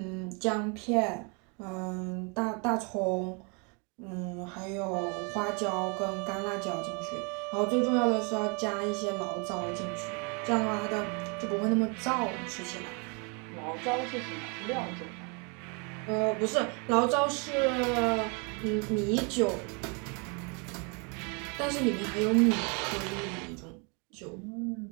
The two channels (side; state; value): left; quieter; 34.0 dB